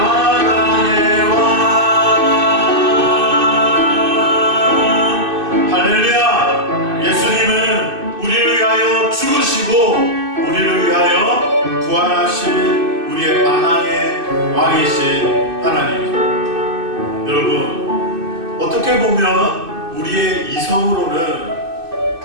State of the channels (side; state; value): left; late; 2.6 ms